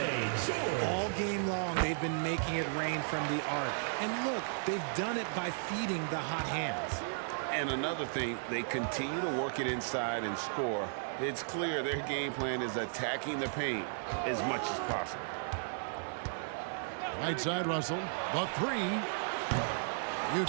All game long, they've been making it rain from the arc. And look, they've done it by feeding the hot hands. And another thing, they continue to work it inside and score. It's clear their game plan is attacking the paint as much as possible. Right side, Russell. The 3.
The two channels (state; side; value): silent; left; 55 dB below the other